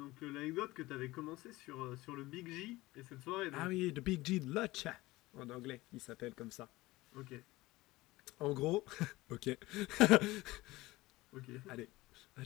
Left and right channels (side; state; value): right; quieter; 19.5 dB